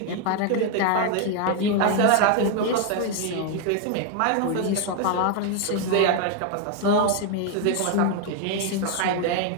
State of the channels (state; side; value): different; both; correlation 0.01